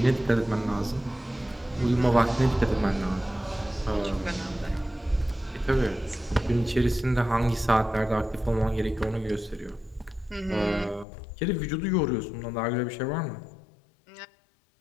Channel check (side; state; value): right; drops out; at 11.1 s